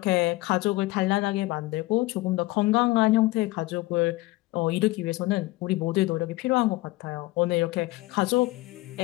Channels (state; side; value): quieter; right; 20.2 dB